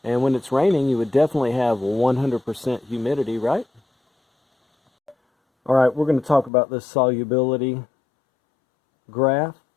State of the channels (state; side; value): drops out; right; at 6.5 s